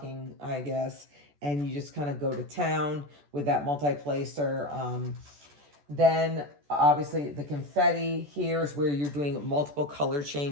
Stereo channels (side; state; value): left; late; 14 ms